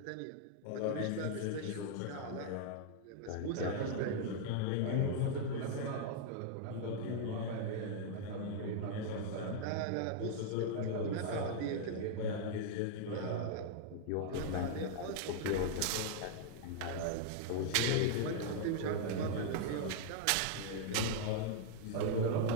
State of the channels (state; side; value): different; both; correlation -0.01